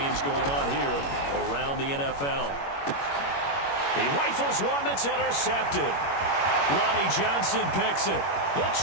going on here around the NFL. He rifles one that's intercepted. Lonnie Johnson picks it. The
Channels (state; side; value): late; right; 21 ms